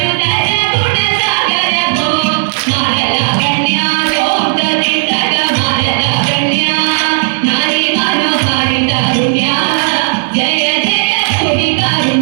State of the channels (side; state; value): left; silent; digital silence